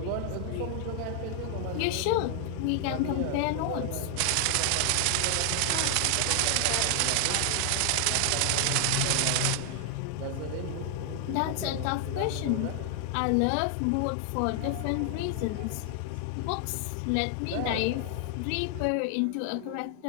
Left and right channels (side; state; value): both; different; correlation 0.00